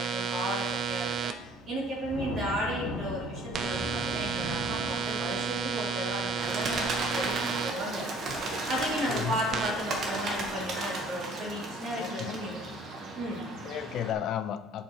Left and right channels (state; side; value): normal; both; correlation 0.54